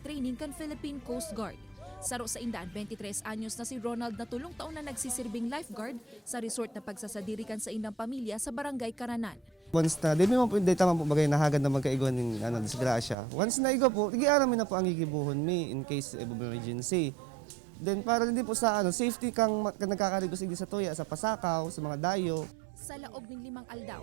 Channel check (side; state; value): left; drops out; at 13.2 s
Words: training kan Philippine Coast Guard. Saro sa indaan, 23 anyos na si Ronald na tulong taon na nagsisirbing lifeguard sa resort na pagsasadirikan sa indang pamilya sa Barangay Karanan. Once na, di mo po, di tama po bagay nahagad na magkaigon ng disgrasya. Once na igo po, igiaramin na po ang igibuhon mi in case of emergency. Then para hindi po sa safety kang nagkakaligos sa tuya, sa pasakaw, sa mga dayo. Sa laog ng 5